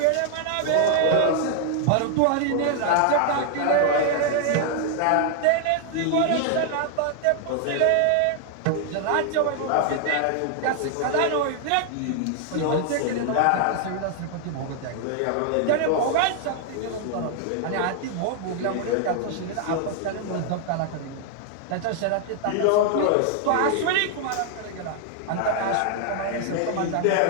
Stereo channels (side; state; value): both; different; correlation 0.00